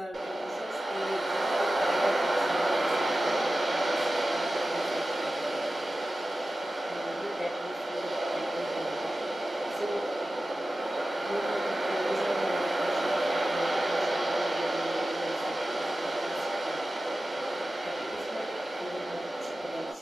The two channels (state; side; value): normal; both; correlation 0.94